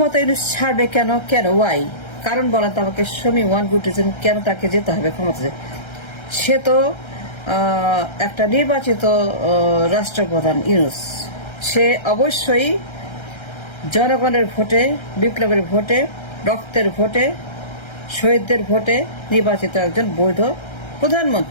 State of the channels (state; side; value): late; right; 1.3 ms